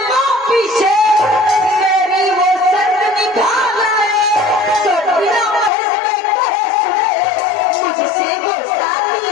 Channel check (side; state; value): right; drops out; at 5.7 s